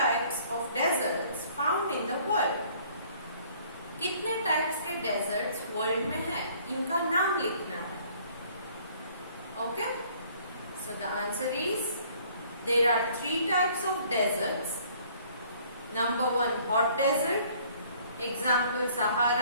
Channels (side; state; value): both; inverted; correlation -0.58